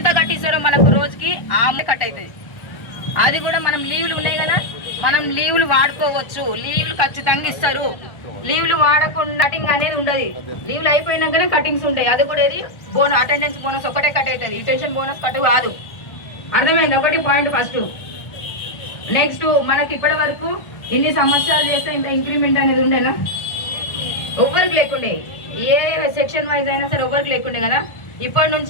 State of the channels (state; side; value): late; right; 1.4 ms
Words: కట్టిస్తారో మనకు రోజుకి ఆ కట్ అవుతుంది. అది కూడా మనం లీవ్లు ఉన్నాయి కదా, మనం లీవ్లు వాడుకోవచ్చు, లీవ్లు ఖచ్చితంగా ఇస్తారు. లీవ్లు వాడకుండా కటింగ్ అనేది ఉండదు, లీవ్లు అయిపోయినాకనే కటింగ్స్ ఉంటాయి. అది కూడా ఏది అటెండెన్స్ బోనస్ ఒకటే కట్ అవుతుంది, రిటెన్షన్ బోనస్ కట్ కాదు. అర్థమైంది ఒకటి పాయింట్ ఫస్ట్. నెక్స్ట్ మనకి ఇప్పటి వరకు ఇన్ని సంవత్సరాలు చేస్తే ఇంత ఇంక్రిమెంట్ అనేది ఉండేనా, ఎవరికి లేకుండే, ఏ సెక్షన్ వైజ్ అయినా సరే ఎవరికి లేకుండే కదా. ఇప్పటి